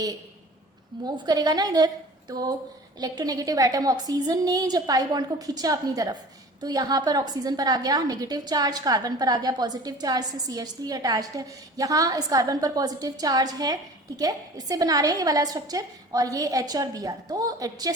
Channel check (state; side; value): normal; both; correlation 0.42